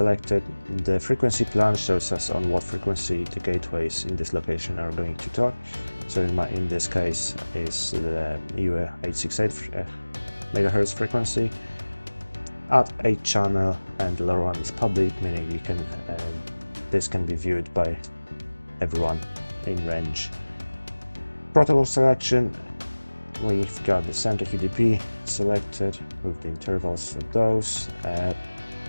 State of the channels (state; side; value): inverted; both; correlation -1.00